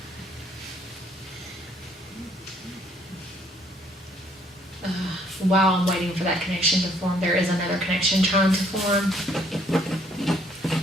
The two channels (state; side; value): normal; both; correlation 0.64